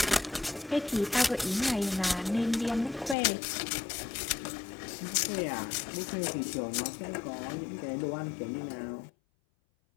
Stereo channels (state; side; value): drops out; right; at 3.2 s